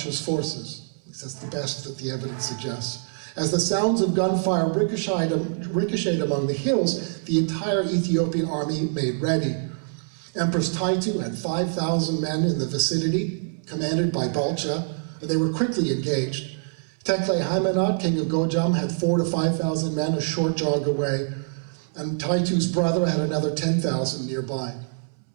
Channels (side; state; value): left; silent; 61 dB below the other